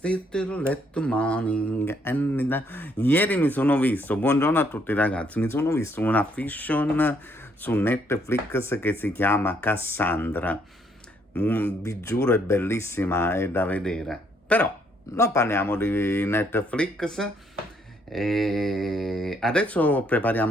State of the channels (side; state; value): both; normal; correlation 0.69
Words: let the morning? Ieri mi sono visto, buongiorno a tutti ragazzi, mi sono visto una fiction su Netflix che si chiama Cassandra. Vi giuro è bellissima, è da vedere. Però non parliamo di Netflix. E adesso